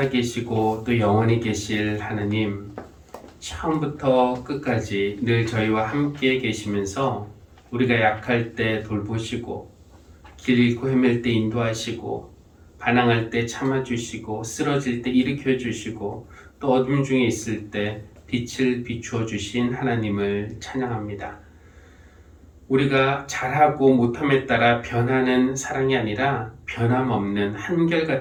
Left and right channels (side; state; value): both; identical; correlation 1.00